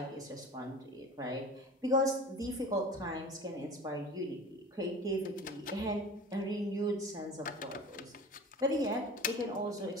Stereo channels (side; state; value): both; normal; correlation 0.38